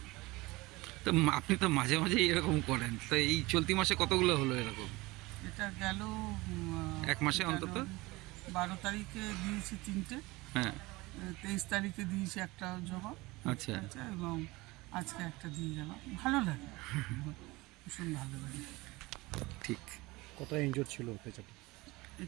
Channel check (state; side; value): quieter; left; 21.7 dB